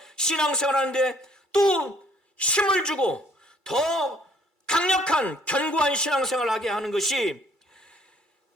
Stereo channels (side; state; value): left; late; 2.3 ms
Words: 신앙생활하는데 또 힘을 주고 더 강력한 견고한 신앙생활을 하게 하는 것이